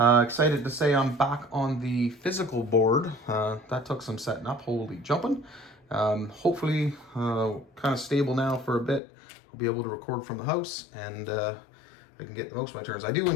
to say I'm back on the physical board. That took some setting up, holy jumping. Hopefully kind of stable now for a bit. I'll be able to record from the house and I can get the most of my turns. I do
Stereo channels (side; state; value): right; drops out; at 9.0 s